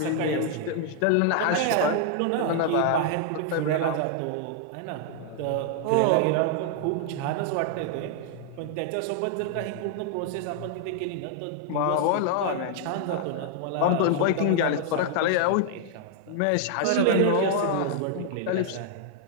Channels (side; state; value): both; different; correlation -0.01